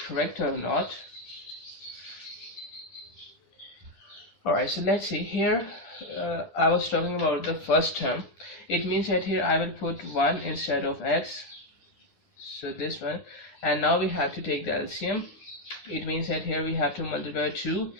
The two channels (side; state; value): right; late; 10 ms